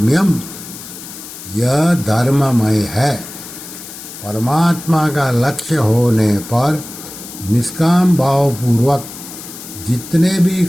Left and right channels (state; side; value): noise; left; hiss, 13 dB below the sound